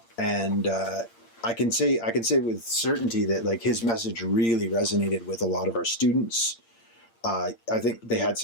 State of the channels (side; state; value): right; late; 8.7 ms